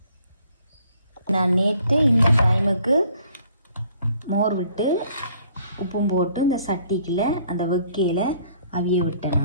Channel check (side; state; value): both; inverted; correlation -0.61